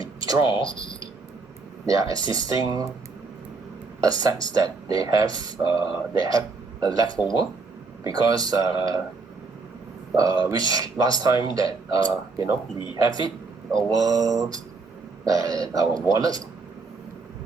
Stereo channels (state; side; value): quieter; left; 4.1 dB